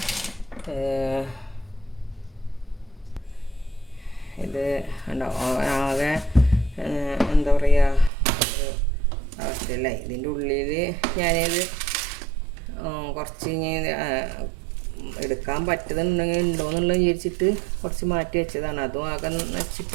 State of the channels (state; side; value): drops out; left; at 8.1 s